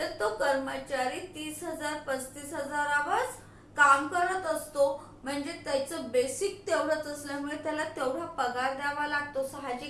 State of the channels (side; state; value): both; identical; correlation 1.00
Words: तो कर्मचारी 30,000, 35,000 काम करत असतो. म्हणजे त्याचं बेसिक तेवढंच असल्यामुळे त्याला तेवढा पगार द्यावा लागतो.